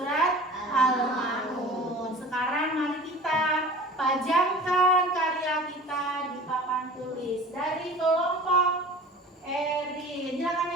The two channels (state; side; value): normal; both; correlation 0.41